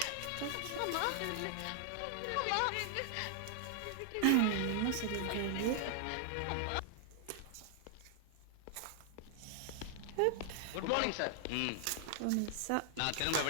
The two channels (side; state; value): both; different; correlation 0.00